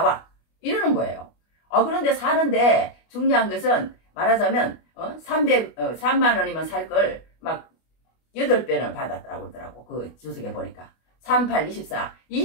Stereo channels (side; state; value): right; late; 25 ms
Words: 이러는 거예요. 그런데 사는데 중요한 것은 말하자면 3만 원이면 살 걸 막 8배는 받았다고 그러더라고. 그 주석에 보니까 38,